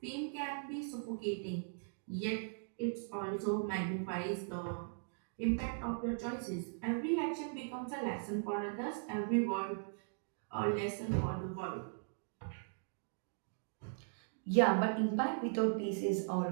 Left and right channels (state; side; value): silent; left; digital silence